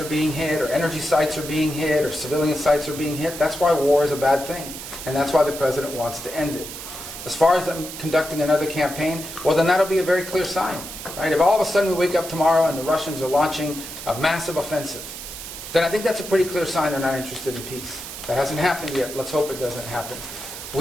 being hit, or energy sites are being hit, or civilian sites are being hit, that's why war is a bad thing. And that's why the president wants to end it. As far as them conducting another campaign, well, then that'll be a very clear sign. Right? If all of a sudden we wake up tomorrow and the Russians are launching a massive offensive, then I think that's a pretty clear sign they're not interested in peace. That hasn't happened yet. Let's hope it doesn't happen.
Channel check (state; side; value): noise; right; hiss, 10 dB below the sound